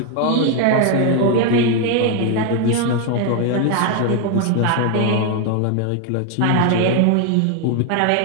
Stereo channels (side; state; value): both; different; correlation 0.01